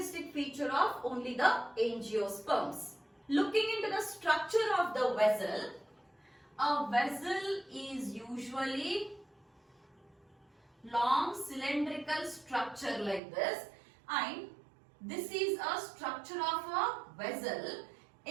feature of only the angiosperms. Looking into the structure of the vessel, a vessel is usually long cylindrical structure like this, and this is a structure of a vessel.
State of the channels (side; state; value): left; drops out; at 13.2 s